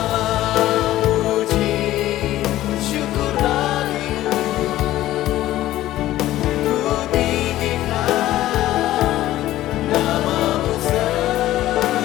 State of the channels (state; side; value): quieter; right; 14.7 dB